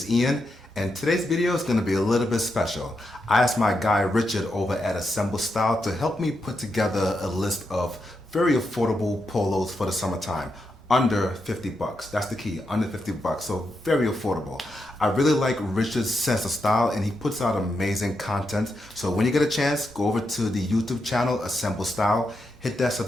Ian, and today's video is going to be a little bit special. I asked my guy Richard over at Assemble Style to help me put together a list of very affordable polos for the summertime. Under 50 bucks. That's the key, under 50 bucks. So very affordable. I really like Richard's sense of style, and he puts out amazing content. So when you get a chance, go over to the YouTube channel, Assemble Style, hit that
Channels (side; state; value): both; normal; correlation 0.84